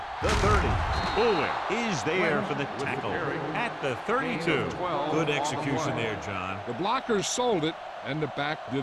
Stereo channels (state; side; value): identical; both; correlation 1.00